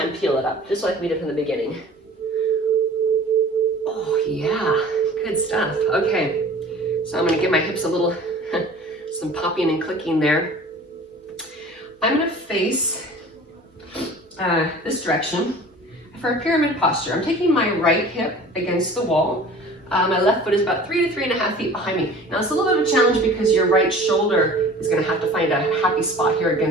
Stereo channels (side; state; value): both; normal; correlation 0.44